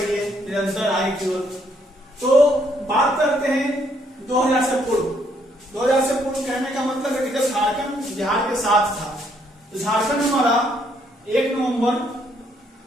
है निरंतर आगे की ओर। तो बात करते हैं 2000 से पूर्व। 2000 से पूर्व कहने का मतलब है कि जब झारखंड बिहार के साथ था, तो झारखंड हमारा 1 नवंबर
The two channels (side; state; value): both; normal; correlation 0.70